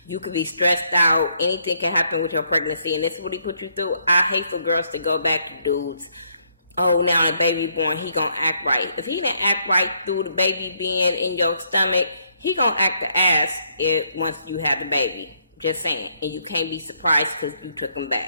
You could be stressed out. Anything can happen with your pregnancy, and this is what he put you through. I hate for girls to go back to dudes. Oh, now the baby born, he gonna act right. If he didn't act right through the baby being in your stomach, he gonna act the ass once you have the baby. Just saying. And you can't be surprised because you took him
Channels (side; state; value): both; inverted; correlation -0.72